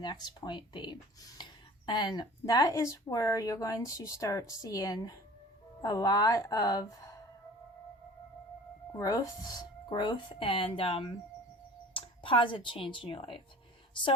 point B? And that is where you're going to start seeing a lot of growth and positive change in your life.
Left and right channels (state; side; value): normal; both; correlation 0.44